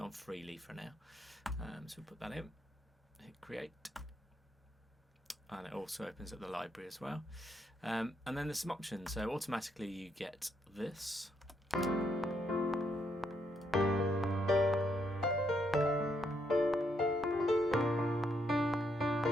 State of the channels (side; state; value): both; normal; correlation 0.76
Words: on freely for now. So we'll put that in, hit create, and it also opens up the library as well. And then there's some options. So automatically you get this.